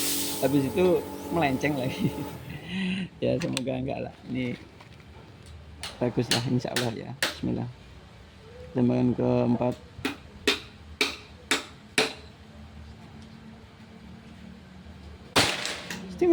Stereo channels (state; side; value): identical; both; correlation 1.00